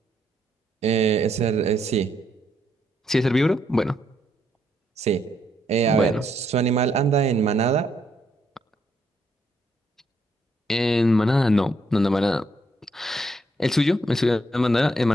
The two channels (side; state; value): both; normal; correlation 0.75